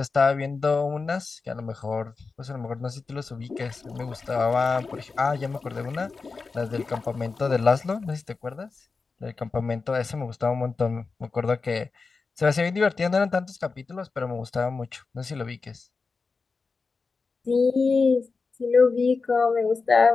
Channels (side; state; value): right; quieter; 4.4 dB